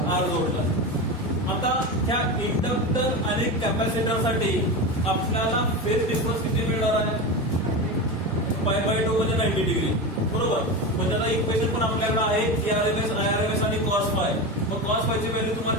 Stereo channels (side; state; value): both; normal; correlation 0.21